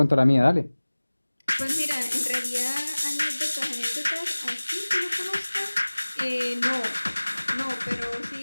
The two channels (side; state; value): both; inverted; correlation -1.00